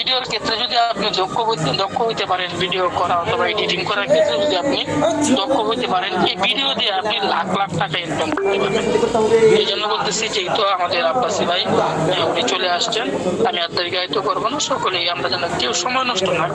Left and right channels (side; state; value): both; identical; correlation 1.00